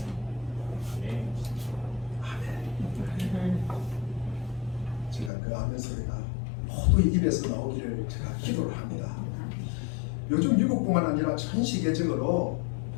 아멘. 제가 그 아멘 소리가 모두 입에서 나오기를 제가 기도를 합니다. 요즘 미국뿐만 아니라 전 세계적으로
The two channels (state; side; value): drops out; right; at 5.3 s